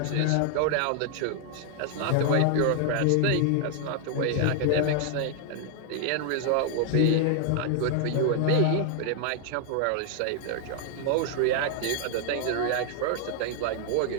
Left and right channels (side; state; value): both; different; correlation 0.00